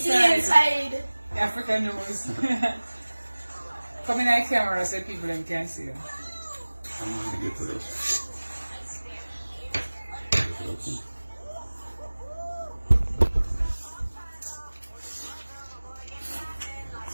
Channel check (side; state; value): both; inverted; correlation -1.00